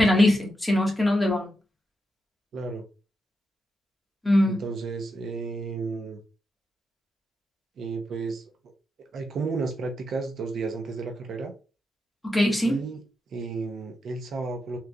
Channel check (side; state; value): both; normal; correlation 0.86